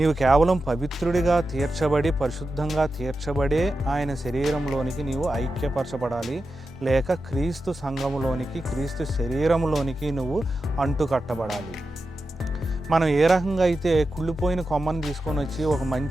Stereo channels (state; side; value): normal; both; correlation 0.91